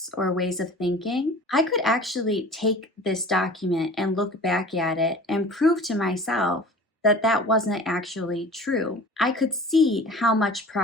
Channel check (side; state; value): both; normal; correlation 0.42